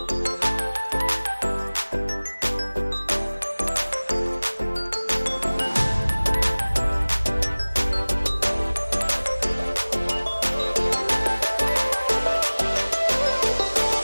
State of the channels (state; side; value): inverted; both; correlation -1.00